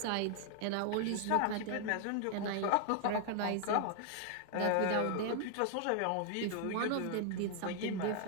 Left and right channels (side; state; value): both; different; correlation 0.00